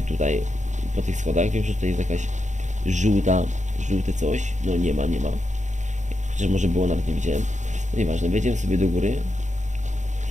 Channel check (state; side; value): late; left; 0.35 ms